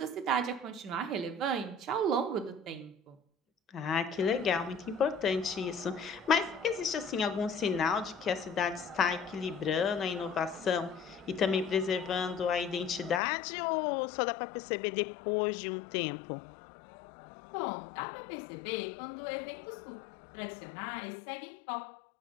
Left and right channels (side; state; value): right; drops out; at 13.2 s